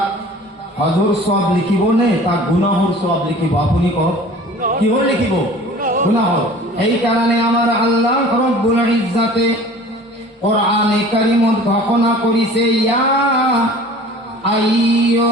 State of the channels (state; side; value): normal; both; correlation 0.45